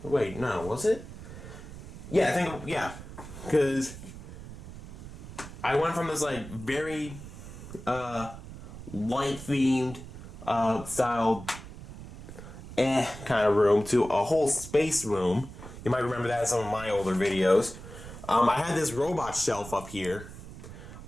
no, was it? Yeah, I think, yeah, because I went from this like very light-themed style kind of room to a whole space room. You might remember that in some of my older videos. I had this robot shelf up here.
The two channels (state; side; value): noise; right; rumble, 13 dB below the sound